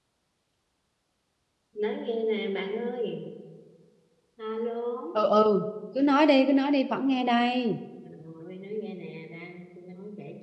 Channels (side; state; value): both; identical; correlation 1.00